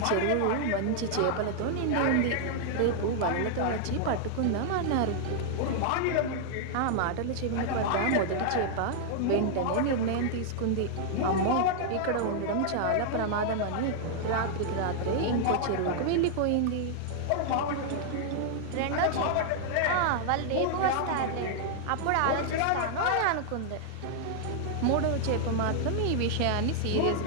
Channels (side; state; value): both; different; correlation -0.01